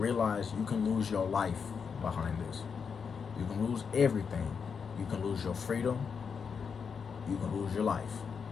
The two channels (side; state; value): right; quieter; 6.2 dB